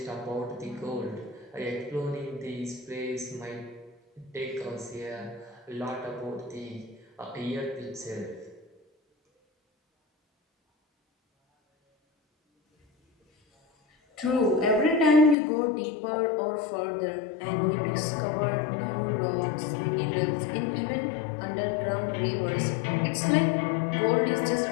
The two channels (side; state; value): right; drops out; at 15.4 s